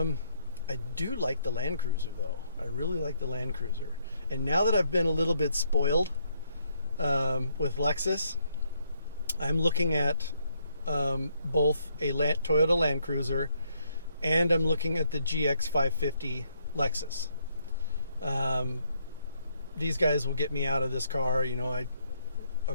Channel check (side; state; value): both; inverted; correlation -0.73